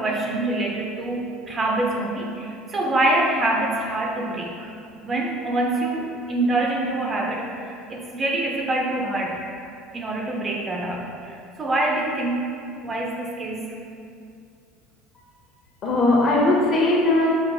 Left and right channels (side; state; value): both; normal; correlation 0.52